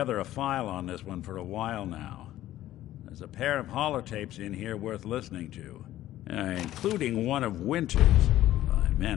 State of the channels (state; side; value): quieter; right; 14.0 dB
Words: a file on this one for a while now. There's a pair of holotapes in here worth listening to, including one of Winter's. I